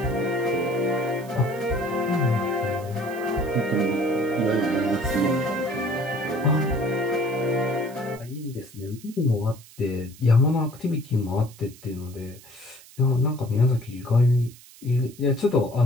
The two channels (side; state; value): right; noise; hiss, 22 dB below the sound